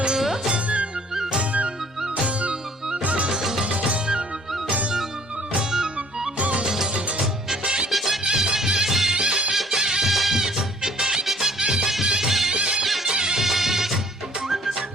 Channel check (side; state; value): both; normal; correlation 0.55